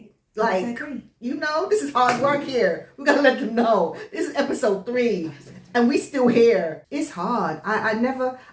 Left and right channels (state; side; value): identical; both; correlation 1.00